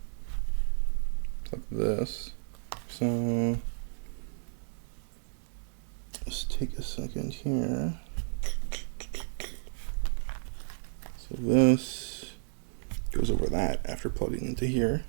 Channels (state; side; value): silent; left; digital silence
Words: like this. So let's take a second here. So this goes over that after plugging into here.